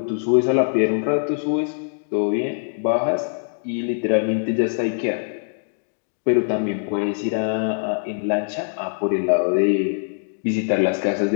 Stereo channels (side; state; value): right; silent; digital silence